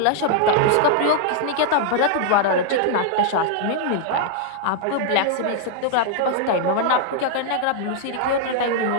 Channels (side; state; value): both; different; correlation -0.01